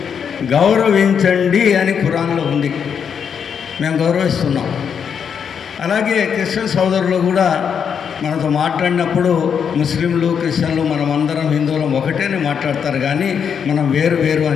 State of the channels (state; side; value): quieter; right; 7.3 dB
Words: గౌరవించండి అని ఖురాన్లో ఉంది. మేము గౌరవిస్తున్నాం. అలాగే క్రిస్టియన్ సోదరులు కూడా మనతో మాట్లాడినప్పుడు ముస్లింలు క్రిస్టియన్లు మనమందరం హిందువులం ఒకటేనే మాట్లాడతారు, కానీ మనం వేరు వేరు